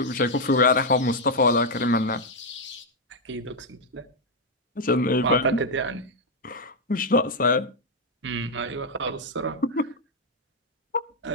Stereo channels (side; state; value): both; normal; correlation 0.00